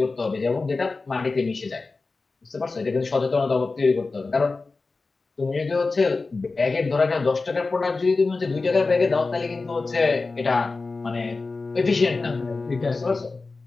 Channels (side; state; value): right; quieter; 3.8 dB